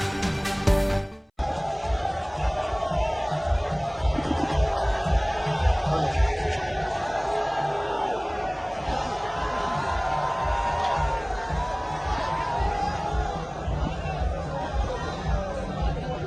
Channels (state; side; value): identical; both; correlation 1.00